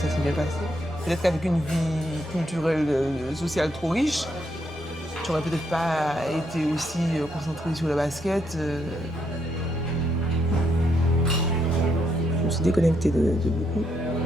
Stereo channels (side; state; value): both; normal; correlation 0.76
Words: s'est bien passé. Peut-être qu'avec une vie culturelle, sociale trop riche, j'aurais peut-être pas été aussi concentrée sur le basket. Je me suis déconnectée de beaucoup.